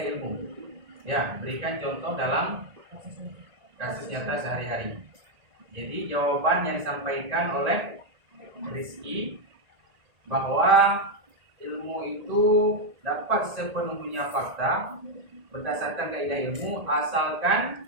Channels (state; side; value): late; left; 1.8 ms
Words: ilmu? Ya, berikan contoh dalam kasus nyata sehari-hari. Jadi jawaban yang disampaikan oleh Rizky bahwa ilmu itu dapat sepenuhnya fakta berdasarkan kaidah ilmu asalkan